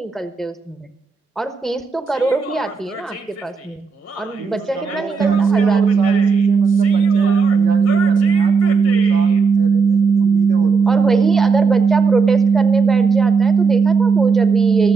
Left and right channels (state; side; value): quieter; left; 5.1 dB